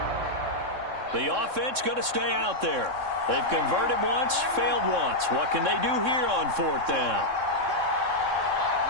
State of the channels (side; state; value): left; late; 3.6 ms